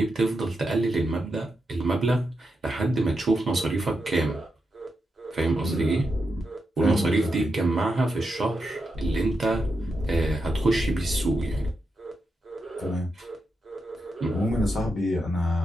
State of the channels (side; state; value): both; normal; correlation 0.86